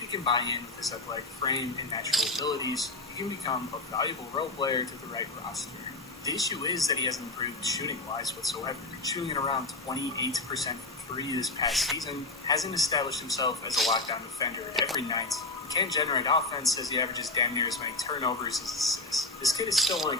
can buy in with his athletic frame and natural abilities, he can become a valuable role player to the right roster. The issue is that he hasn't improved shooting-wise whatsoever. Shooting at around 28% from 3 this past season, hasn't established himself as a lockdown defender every night. He can't generate offense as he averages damn near as many turnovers as assists. This kid is still only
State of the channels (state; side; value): quieter; right; 3.0 dB